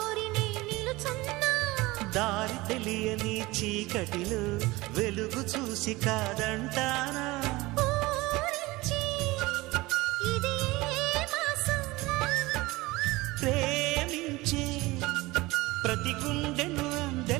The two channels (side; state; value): left; quieter; 20.9 dB